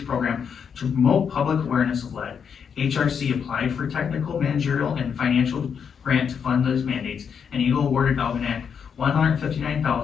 program to promote public awareness of lead. HRC applied for technical, managerial, and financial grant to fund those mandates, and Eagle awarded Algonac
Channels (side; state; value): right; quieter; 7.0 dB